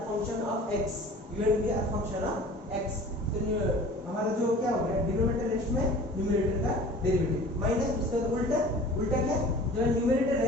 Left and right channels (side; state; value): both; normal; correlation 0.44